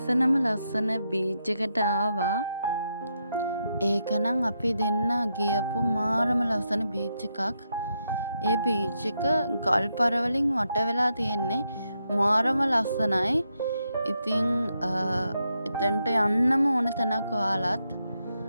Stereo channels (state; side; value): inverted; both; correlation -0.82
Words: බීච් එකට ආවා. ඒකනම් අපි දෙන්න ගියපු මාරම ලස්සන බීච් එකක්. ඒ බීච් එක ගල් පරවලින් වට වෙලා තියෙන්නේ. මාරම ලස්සනයි. ඉතින් එතනට යන්නම ඕන තැනක් ඔයාලත්.